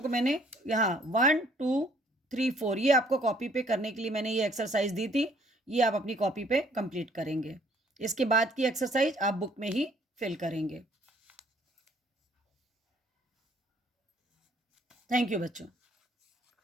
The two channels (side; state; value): both; normal; correlation 0.61